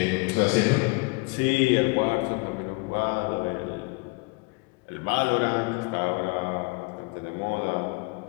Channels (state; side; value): quieter; right; 29.1 dB